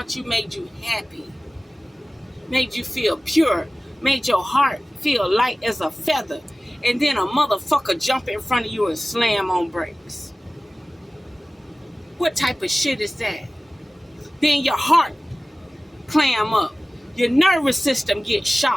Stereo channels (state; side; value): normal; both; correlation 0.97